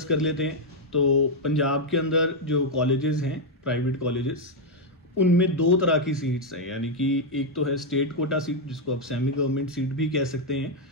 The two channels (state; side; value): normal; both; correlation 0.00